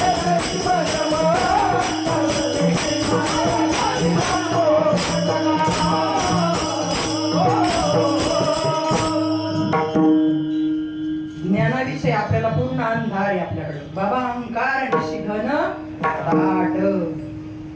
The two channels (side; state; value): both; identical; correlation 1.00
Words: विषय आपल्याला पूर्ण अंधार आहे आपल्याकडे. बाबा अहंकार निशिघन ताट.